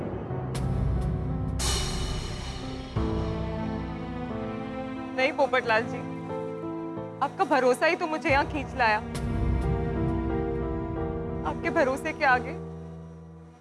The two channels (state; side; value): identical; both; correlation 1.00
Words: नहीं पोपटलाल जी, आपका भरोसा ही तो मुझे यहाँ खींच लाया। आपके भरोसे के आगे